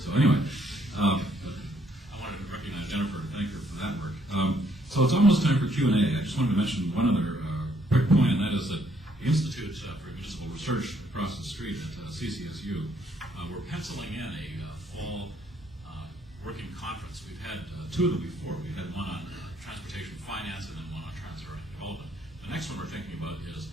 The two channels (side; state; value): both; normal; correlation 0.68